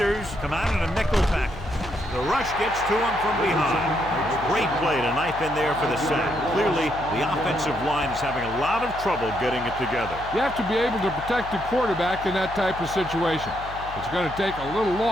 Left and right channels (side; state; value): left; noise; hum, 14 dB below the sound